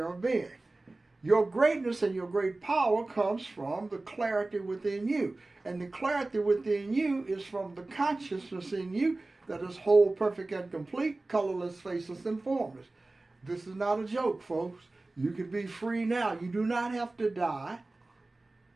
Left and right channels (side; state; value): left; quieter; 3.1 dB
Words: of being. Your greatness and your great power comes from the clarity within you. And the clarity within you is from the consciousness in you that is whole, perfect, and complete, colorless, faceless, and formless. This is not a joke, folks. You can be free now. You do not have to die